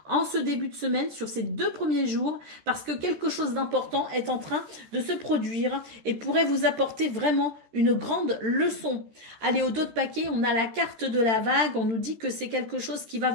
en ce début de semaine sur ces 2 premiers jours parce que quelque chose d'important est en train de se produire et pourrait vous apporter vraiment une grande leçon. Allez, au dos de paquet, on a la carte de la vague. On nous dit que c'est quelque chose qui va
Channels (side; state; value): left; late; 13 ms